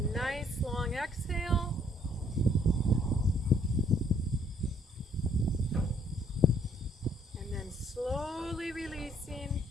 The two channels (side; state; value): both; normal; correlation 0.65